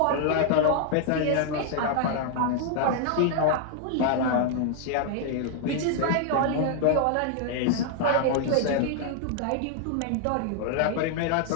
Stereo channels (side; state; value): both; different; correlation -0.01